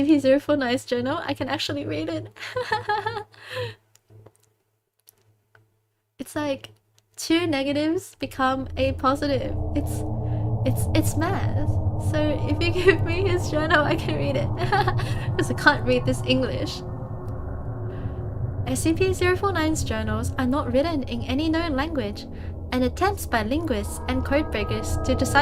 journal, I can actually read it. It's like 2 negatives become a positive. It's math. So if you give me his journal, I can read it. Because I can't read this English. SCP-049's journals are not written in any known language, and attempts by linguists and codebreakers to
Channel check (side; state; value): both; identical; correlation 1.00